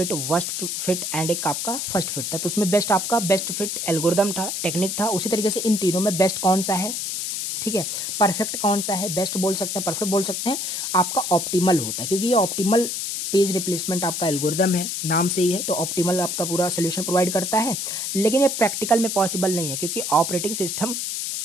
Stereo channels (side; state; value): left; noise; hiss, 3 dB below the sound